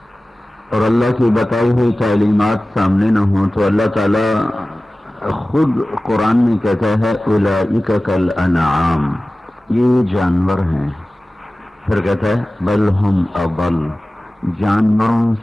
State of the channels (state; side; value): normal; both; correlation 0.97